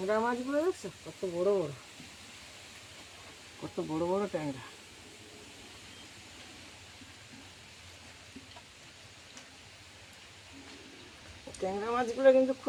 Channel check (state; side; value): identical; both; correlation 1.00